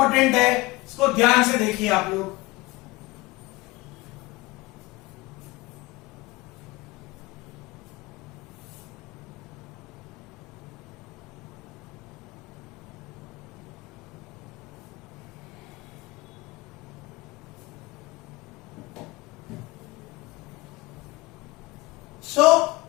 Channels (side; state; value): right; quieter; 22.0 dB